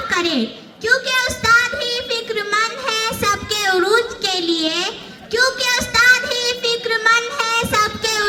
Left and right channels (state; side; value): identical; both; correlation 1.00